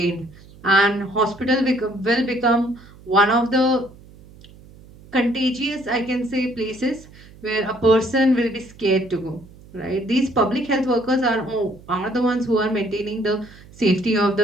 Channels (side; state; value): right; noise; hum, 22 dB below the sound